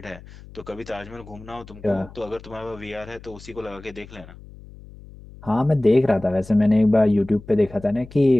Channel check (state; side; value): noise; left; hum, 19 dB below the sound